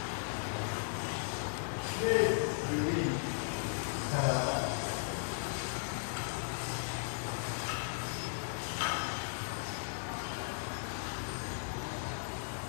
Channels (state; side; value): silent; right; digital silence